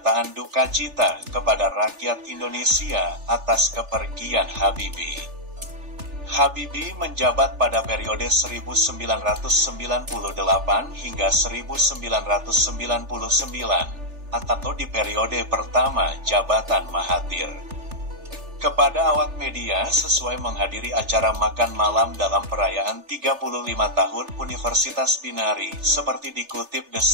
duka cita kepada rakyat Indonesia atas kepergian Habibie. Habibie menjabat pada periode 1998 hingga 1999 atau di periode pertama jabatan Mahathir. Kepada awak media sesuai menghadiri acara makan malam dalam perayaan 35 tahun Universitas Binari seperti dikutip The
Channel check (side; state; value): left; late; 3.4 ms